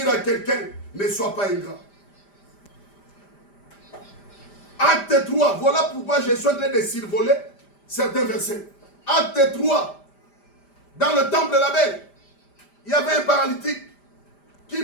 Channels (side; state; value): right; late; 5.0 ms